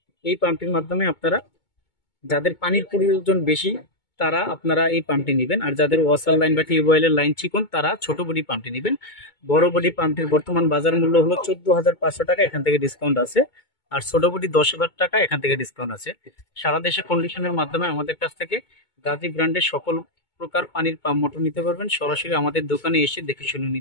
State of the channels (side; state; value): right; late; 2.2 ms